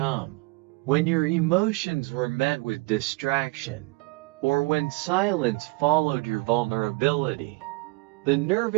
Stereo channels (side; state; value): left; quieter; 26.8 dB